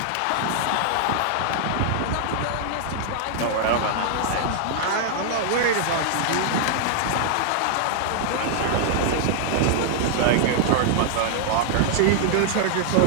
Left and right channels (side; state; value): both; different; correlation -0.01